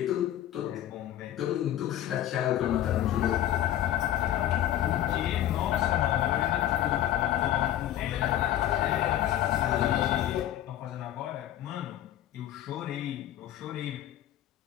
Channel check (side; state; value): right; quieter; 12.5 dB